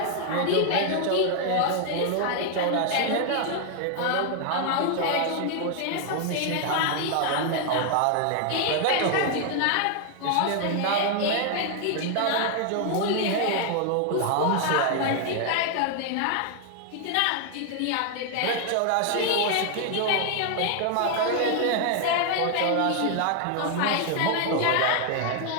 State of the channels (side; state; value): both; different; correlation 0.00